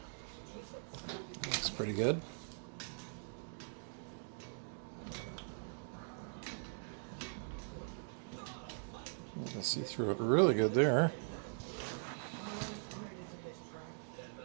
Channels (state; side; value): silent; left; digital silence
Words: Looks pretty good. You can see through it really good there.